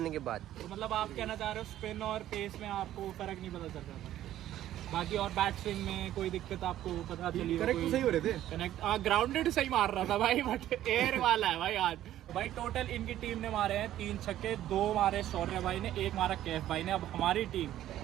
के बाद। तो मतलब आप कहना चाह रहे हो स्पिन और पेस में आपको फर्क नहीं पता चल रहा था? बाकी और बैट स्विंग में कोई दिक्कत आपको पता चली? करेक्ट सही हो रहे थे। कनेक्ट ग्राउंडेड सही मार रहा था भाई, बट एयर वाला है भाई आज। भाई टोटल इनकी टीम ने मारे हैं 3 छक्के, 2 मारे शौर्य भाई ने, 1 मारा कैफ भाई ने। अब हमारी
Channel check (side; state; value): left; quieter; 12.8 dB